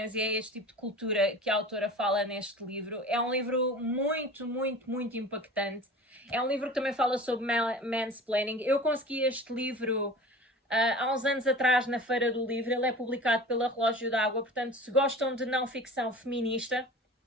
e é este tipo de cultura que a autora fala neste livro. É um livro muito, muito, muito impactante. É um livro que também fala sobre mansplaining. Eu consegui este livro há uns anos atrás na Feira do Livro. Ele é publicado pela Relógio d'Água, portanto, se gostam de não ficção feminista,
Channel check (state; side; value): normal; both; correlation 0.39